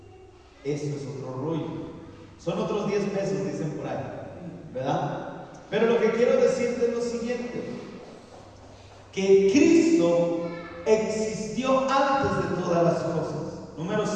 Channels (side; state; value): both; identical; correlation 1.00